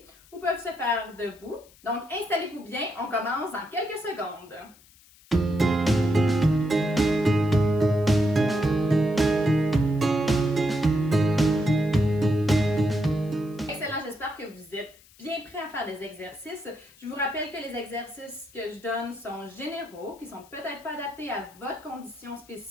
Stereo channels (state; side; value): noise; left; hiss, 27 dB below the sound